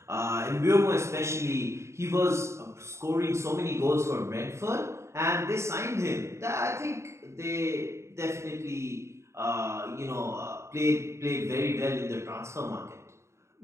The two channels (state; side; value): late; left; 0.14 ms